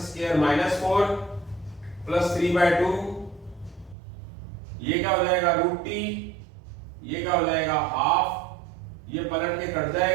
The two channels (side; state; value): left; drops out; at 4.0 s